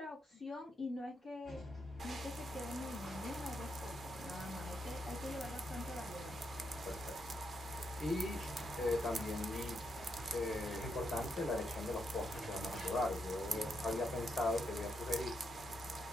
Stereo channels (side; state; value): both; normal; correlation 0.80